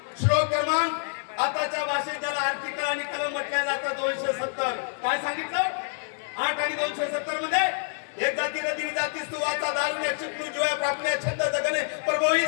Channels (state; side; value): silent; right; 60 dB below the other